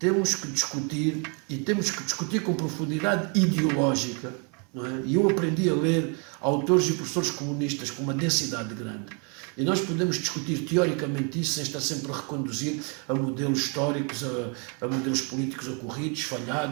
que discutir, e temos que discutir com profundidade ideológica, não é? E eu aprendi a ler autores e professores comunistas com uma densidade grande. E nós podemos discutir teoricamente isso sem estar sempre a reconduzir a modelos históricos, a modelos políticos ocorridos,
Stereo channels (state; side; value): quieter; left; 36.3 dB